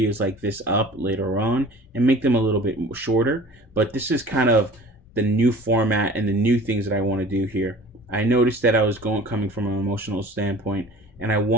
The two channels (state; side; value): normal; both; correlation 0.44